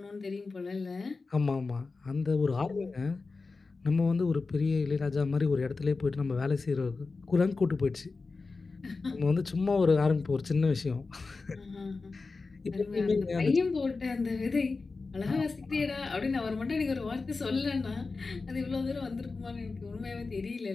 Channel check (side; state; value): right; quieter; 4.0 dB